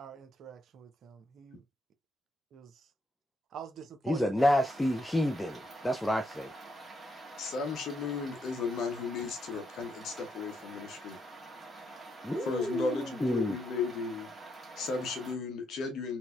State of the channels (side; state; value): both; normal; correlation 0.78